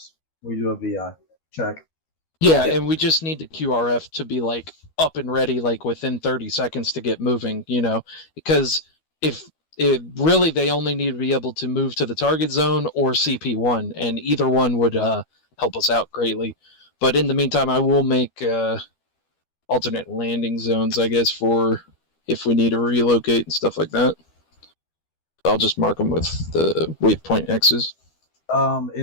we do a VI check. Yeah, and we just need the QRF to be like up and ready, like within 30 seconds to get moving, you know, because really they only need to be able to move to the target zone or CP1, and either one would help us out greatly. But in the meantime, I will make alternate landing zones, I guess, for if we need to relocate and stuff like that. I'll just mark them with the waypoint X's.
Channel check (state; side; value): late; right; 12 ms